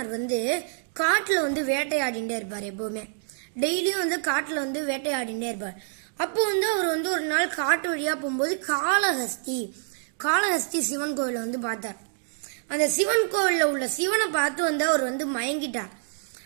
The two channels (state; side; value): silent; left; digital silence